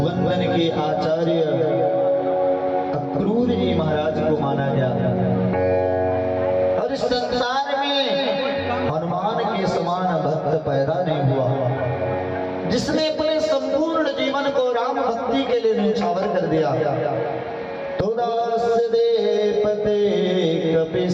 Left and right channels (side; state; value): both; identical; correlation 1.00